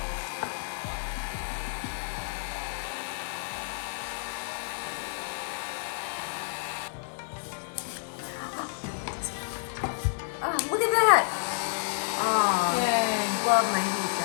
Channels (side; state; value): right; silent; 58 dB below the other